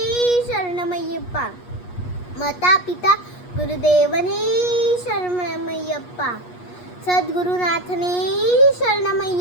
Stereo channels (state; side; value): late; right; 8.3 ms